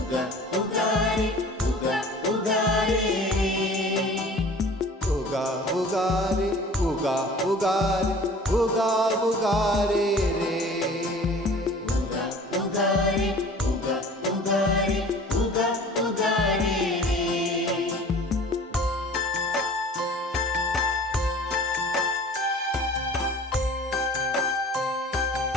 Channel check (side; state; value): both; normal; correlation 0.45